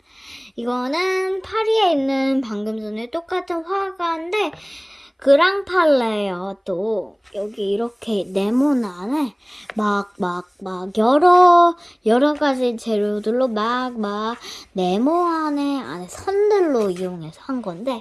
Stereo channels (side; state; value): both; identical; correlation 1.00